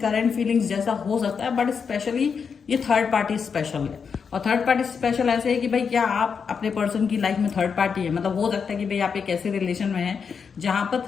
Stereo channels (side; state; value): right; quieter; 6.2 dB